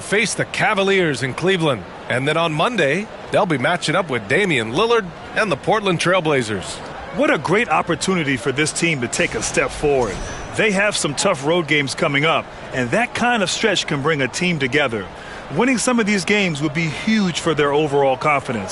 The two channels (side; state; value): both; identical; correlation 1.00